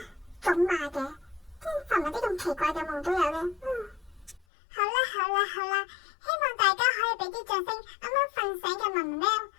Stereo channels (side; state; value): right; drops out; at 4.4 s